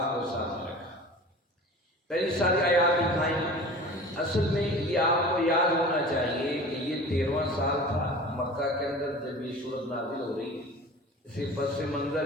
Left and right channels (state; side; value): normal; both; correlation 0.39